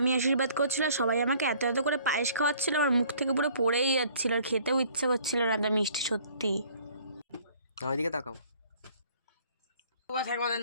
আশীর্বাদ করছিল, সবাই আমাকে এত এত করে পায়েস খাওয়াচ্ছিল, আমার মুখ থেকে পুরো পড়েই যাচ্ছিল, আর খেতেও ইচ্ছে করছিল না এত মিষ্টি সত্যি। ওইদিকে তাকাও,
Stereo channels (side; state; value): both; inverted; correlation -0.56